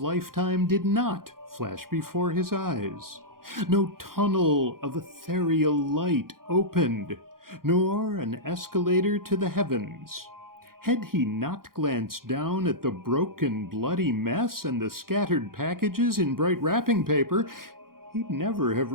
did not flash before his eyes. No tunnel of ethereal light opened, nor an escalator to the heavens. Had he not glanced down at the broken, bloody mess and the scattered packages in bright wrapping paper, he'd never have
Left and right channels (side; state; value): left; late; 0.92 ms